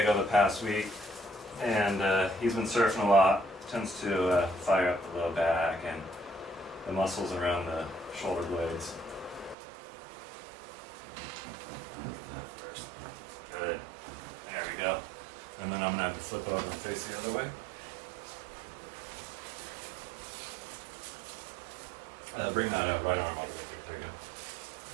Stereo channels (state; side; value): drops out; left; at 9.6 s